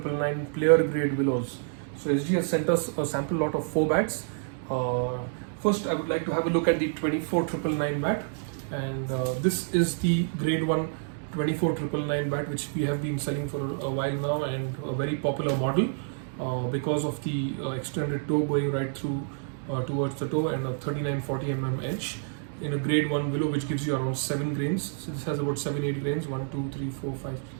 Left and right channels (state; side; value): silent; left; digital silence